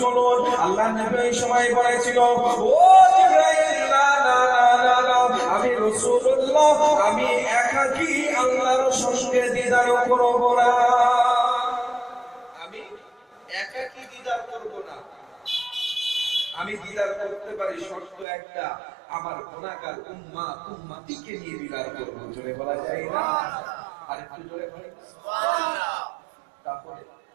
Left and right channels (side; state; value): left; drops out; at 18.2 s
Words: আল্লাহ নবী এই সময় বলেছিল, ও জিবরাইল, না না না না, আমি রাসূলুল্লাহ, আমি একাকী আল্লাহর সঙ্গে দিদার করব না, আমি একাকী দিদার করব না। আমি দিদার করতে পারি, শর্ত একটা, আমার গুনাহগার উম্মতিকে নিয়ে দিদার করব। জোরে বলা যায় না? আর একটু জোরে বলি সুবহানাল্লাহ। তাহলে